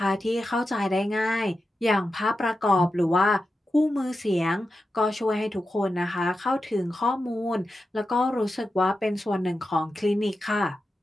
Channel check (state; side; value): normal; both; correlation 0.91